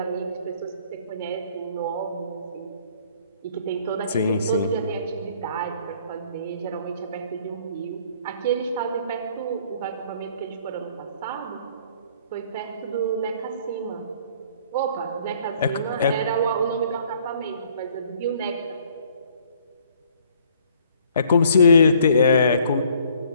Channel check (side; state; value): both; inverted; correlation -0.60